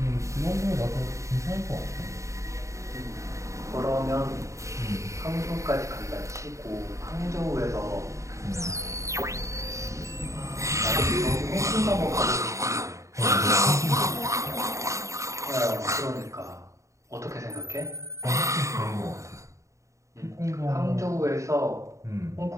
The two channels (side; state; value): left; late; 0.15 ms